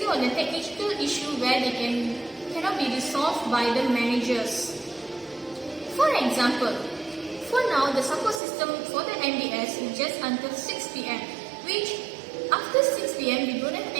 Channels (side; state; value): left; drops out; at 8.4 s